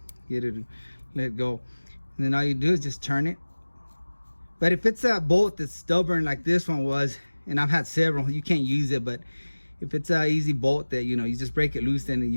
get it to let go. And then all you do is just turn it. But if it's a bolt that's stubborn like this one was, and I've had several, you can't use it. But if it's an easy bolt that, you know, you just break it loose, then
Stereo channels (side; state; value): both; inverted; correlation -1.00